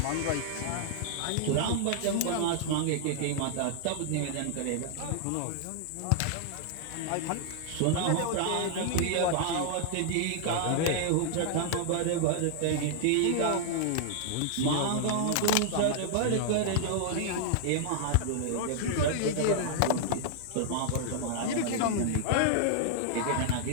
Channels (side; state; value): both; different; correlation -0.01